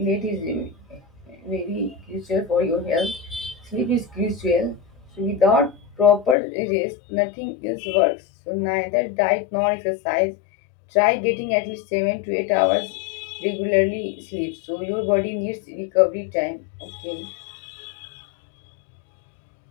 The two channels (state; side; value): drops out; right; at 6.4 s